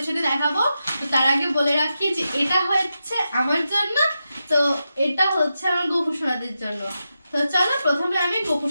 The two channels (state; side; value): inverted; both; correlation -0.89